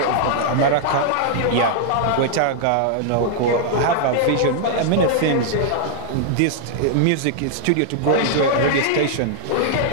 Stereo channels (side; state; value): both; different; correlation -0.01